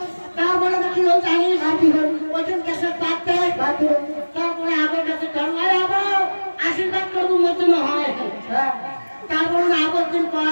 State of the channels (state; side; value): inverted; both; correlation -1.00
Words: তারপরে কি হল জানিস আর কি হয় ওইখান কাছে পাতে তারপরে আবার কাছে আশীর্বাদ করবো মতন হয় হ্যাঁ তারপরে আবার দিন